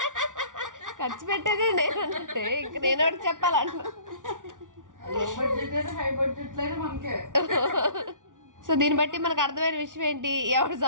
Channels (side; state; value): left; late; 0.88 ms